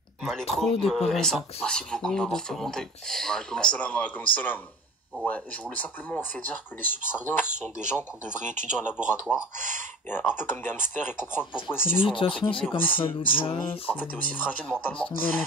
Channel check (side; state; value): both; normal; correlation 0.39